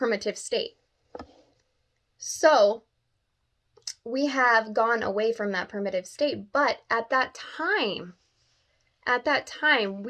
state. So we have gone away from that primitive state. But at that time,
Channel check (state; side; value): identical; both; correlation 1.00